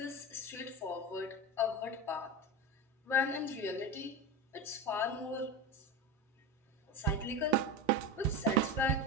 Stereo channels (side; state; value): both; normal; correlation 0.21